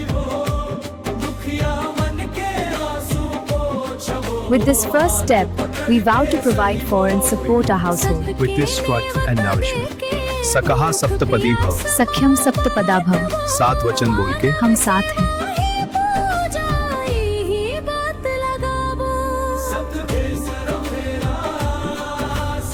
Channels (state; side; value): identical; both; correlation 1.00